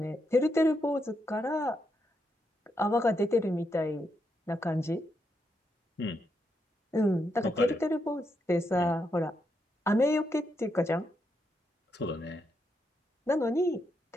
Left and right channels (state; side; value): normal; both; correlation 0.81